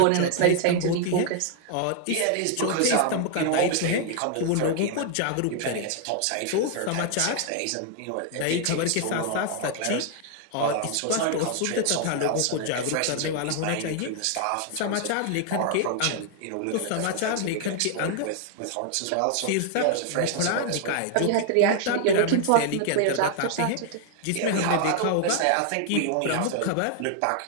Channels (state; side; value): different; both; correlation 0.00